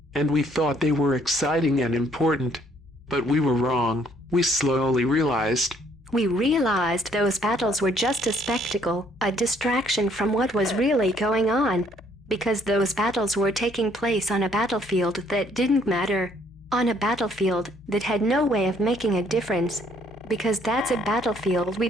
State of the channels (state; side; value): normal; both; correlation 0.65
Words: And we thought they were exciting and important. But we were wrong. We slowly realized. We realized those battles were just a spectacle, a distraction from what was really going on. Because those battles were taking place on a battlefield that didn't matter. On a battlefield that had no way of making a difference. Because that's a battlefield we